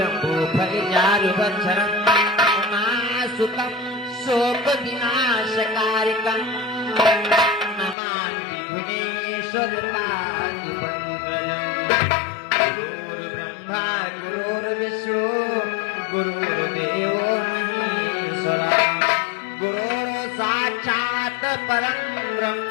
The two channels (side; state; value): right; drops out; at 8.0 s